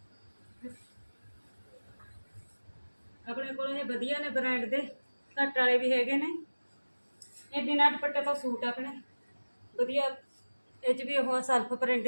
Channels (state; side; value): inverted; both; correlation -1.00